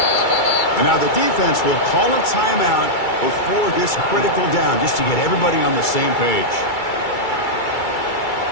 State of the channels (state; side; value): late; right; 2.3 ms